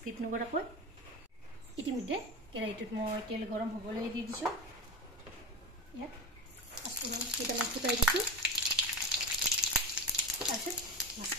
নকৰাকৈ ইতিমধ্যে কেৰাহীটোত মই তেল গৰম হ'বলৈ দি দিছো ইয়াত পাঁচফোৰণ কেইটামান ফুটাই দিছো তাৰপিছত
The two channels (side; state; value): both; normal; correlation 0.24